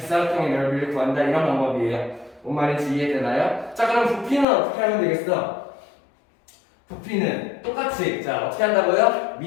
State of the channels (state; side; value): drops out; right; at 4.5 s